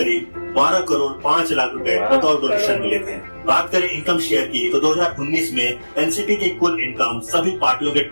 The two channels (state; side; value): inverted; both; correlation -1.00